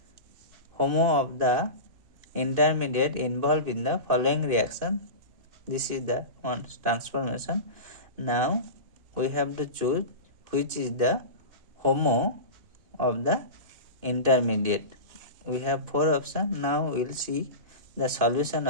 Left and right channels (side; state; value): left; late; 2.5 ms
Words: HOMO of the intermediate involved in the following reaction. This is the one transformation. Now we have to choose which is the HOMO of the intermediate. We have 4 options. Now we will see the solution